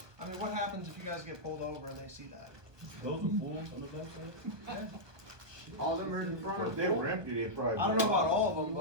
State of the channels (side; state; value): left; late; 1.2 ms